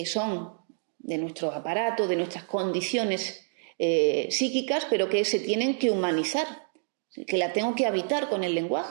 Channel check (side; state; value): left; silent; digital silence